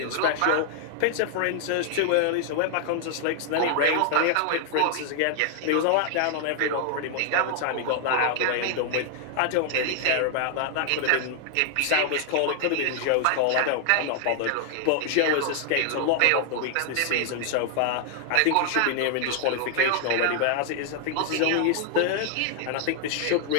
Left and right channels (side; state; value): both; different; correlation 0.00